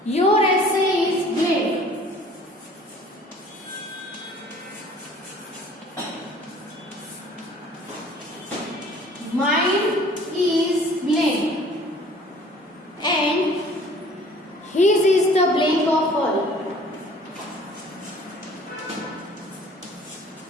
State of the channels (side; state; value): both; normal; correlation 0.51